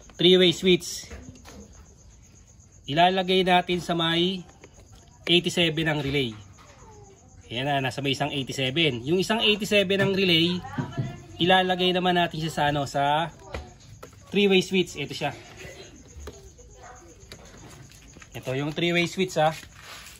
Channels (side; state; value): both; identical; correlation 1.00